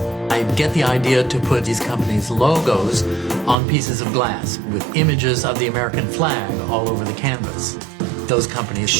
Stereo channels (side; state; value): left; drops out; at 3.6 s